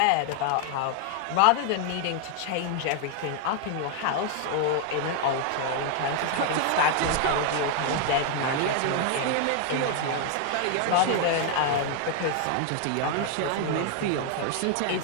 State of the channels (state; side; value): different; both; correlation 0.00